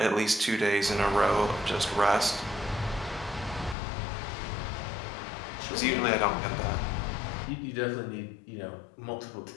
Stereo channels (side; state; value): right; drops out; at 3.8 s